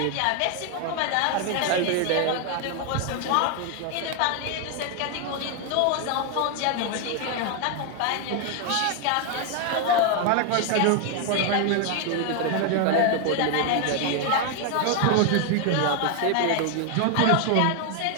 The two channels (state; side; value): different; both; correlation 0.01